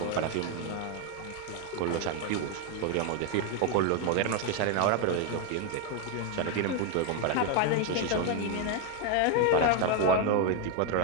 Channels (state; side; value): different; both; correlation 0.01